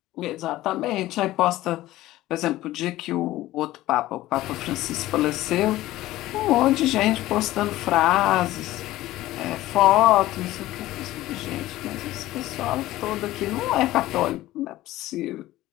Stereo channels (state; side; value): quieter; right; 16.1 dB